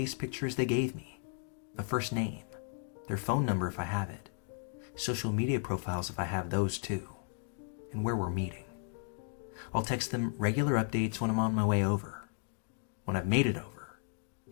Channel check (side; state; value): right; silent; 55 dB below the other